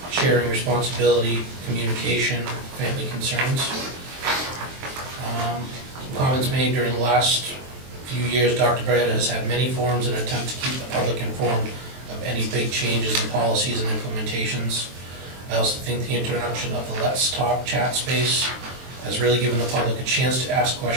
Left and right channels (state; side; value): late; left; 23 ms